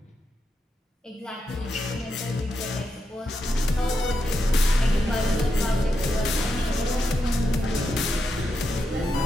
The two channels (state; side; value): normal; both; correlation 0.85